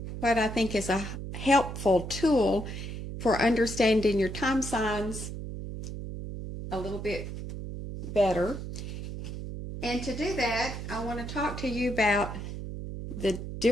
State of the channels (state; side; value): noise; right; hum, 7 dB below the sound